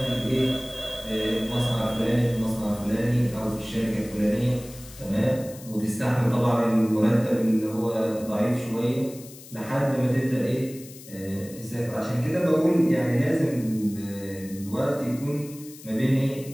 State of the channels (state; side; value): noise; left; hiss, 18 dB below the sound